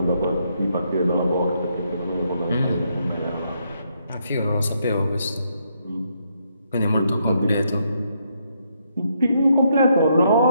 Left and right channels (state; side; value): inverted; both; correlation -0.76